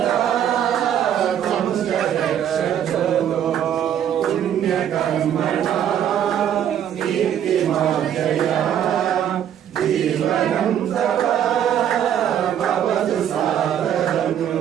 त्वं च रक्षतु पुण्यकर्मणा कीर्तिमार्जय जीवनं तव भवतु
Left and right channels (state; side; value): quieter; left; 9.8 dB